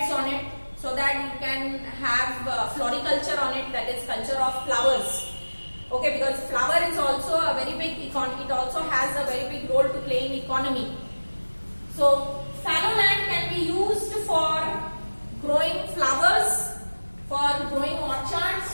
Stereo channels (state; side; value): inverted; both; correlation -1.00